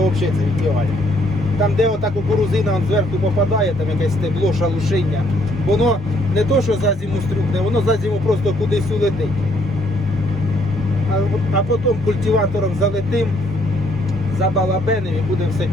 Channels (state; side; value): normal; both; correlation 0.68